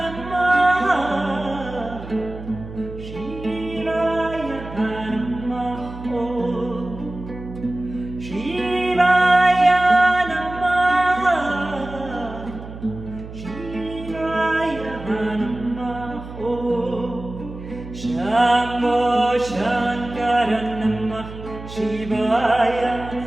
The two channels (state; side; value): noise; right; hum, 13 dB below the sound